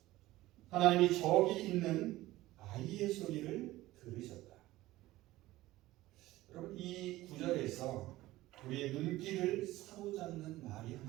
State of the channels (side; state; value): left; quieter; 17.1 dB